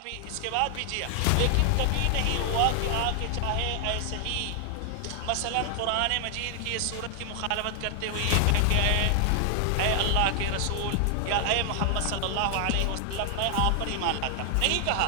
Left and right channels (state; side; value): different; both; correlation 0.00